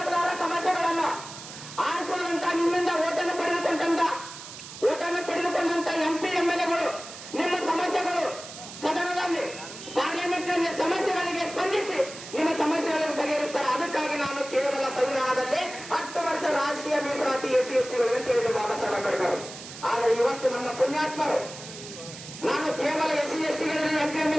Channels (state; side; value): noise; right; hiss, 13 dB below the sound